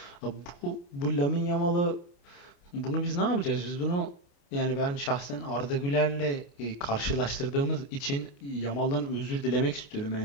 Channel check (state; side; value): late; right; 28 ms